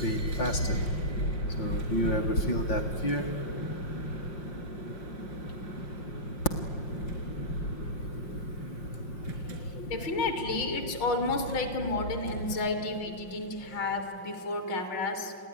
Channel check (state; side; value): late; right; 5.6 ms